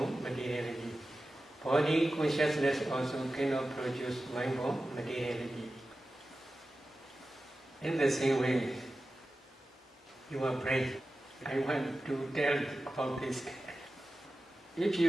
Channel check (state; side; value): normal; both; correlation 0.94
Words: materiality. Body consciousness also cannot produce mind-borne materiality. In the same way, your brain, I want to tell about this. If